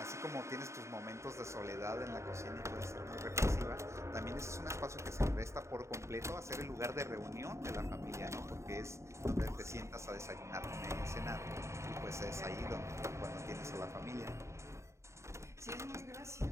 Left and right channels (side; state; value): left; late; 0.14 ms